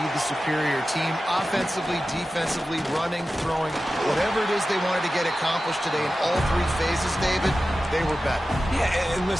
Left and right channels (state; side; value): normal; both; correlation 0.94